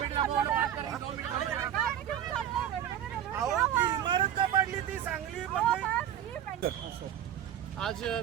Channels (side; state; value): left; quieter; 10.4 dB